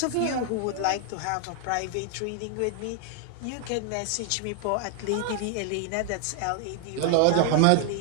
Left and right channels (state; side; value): different; both; correlation 0.00